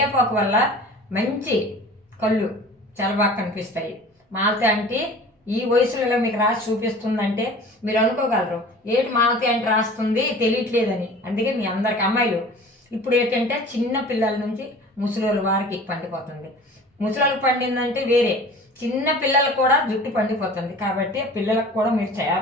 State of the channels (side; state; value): both; normal; correlation 0.42